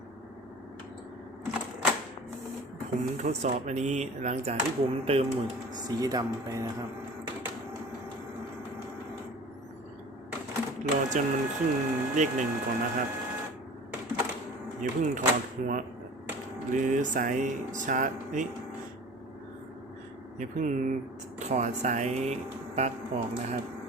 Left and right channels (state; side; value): normal; both; correlation 0.41